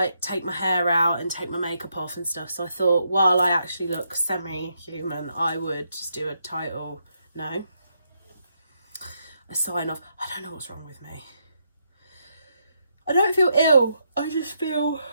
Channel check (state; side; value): inverted; both; correlation -0.79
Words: take my hair out and take my makeup off and stuff. So I thought while I actually look semi-human, I would just do a title. No, a sign off. I don't know what's wrong with me. I don't feel ill. I just feel